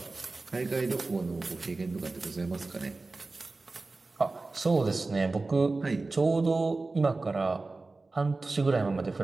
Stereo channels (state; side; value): quieter; left; 3.5 dB